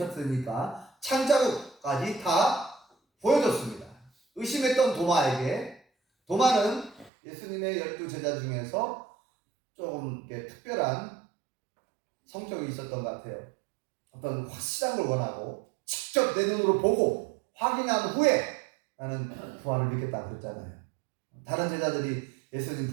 창자국까지 다 보여줬습니다. 의심했던 도마는 예수님의 12 제자 중에서 조금 특별한 성격이 있었던 것 같아요. 어떤 확실한 걸 원하고 직접 내 눈으로 보고 확인한 후에 나는 부활을 믿겠다 그랬잖아요. 다른 제자들이 예수님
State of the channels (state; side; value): drops out; left; at 7.1 s